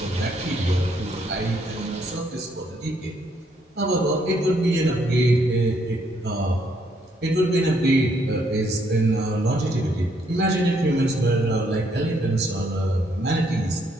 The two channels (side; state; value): both; normal; correlation 0.71